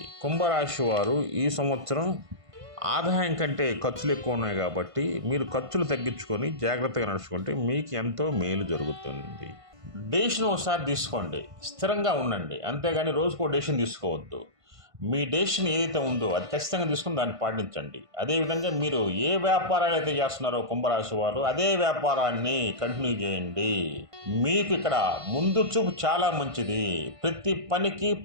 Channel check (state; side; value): late; left; 1.5 ms